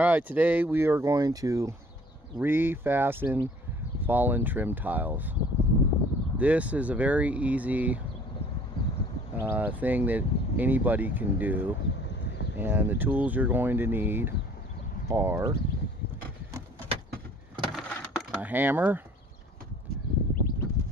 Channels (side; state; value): both; normal; correlation 0.53